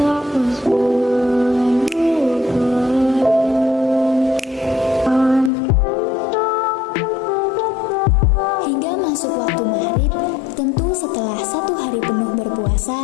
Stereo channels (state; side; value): drops out; right; at 5.5 s